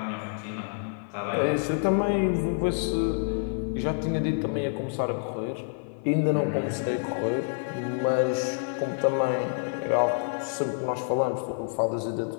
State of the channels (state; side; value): silent; right; 56 dB below the other